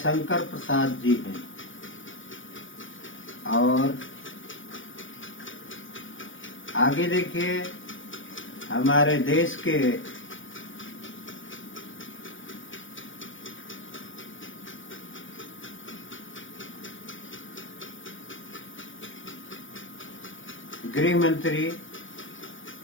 प्रसाद जी हैं। और आगे देखिए, हमारे देश के गृह मंत्री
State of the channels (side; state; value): right; late; 0.57 ms